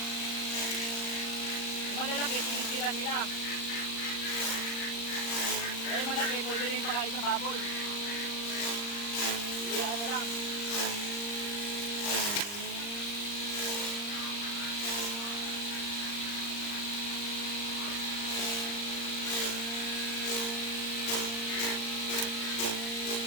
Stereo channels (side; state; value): right; late; 39 ms